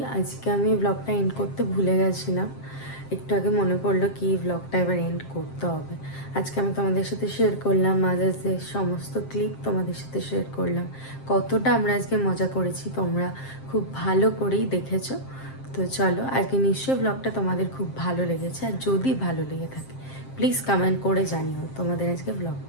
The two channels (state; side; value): late; right; 7.5 ms